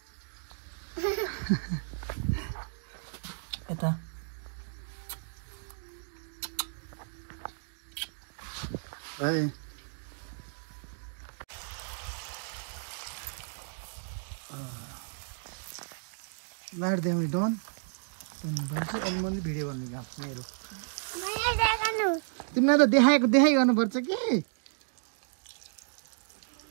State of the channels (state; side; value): silent; left; digital silence